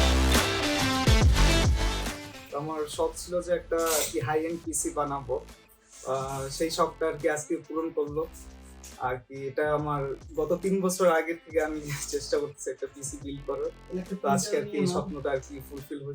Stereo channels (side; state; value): both; identical; correlation 1.00